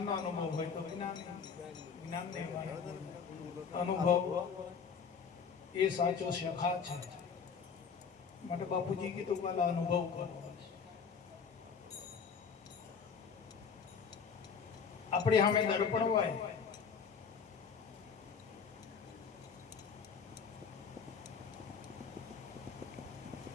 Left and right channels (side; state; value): right; quieter; 6.2 dB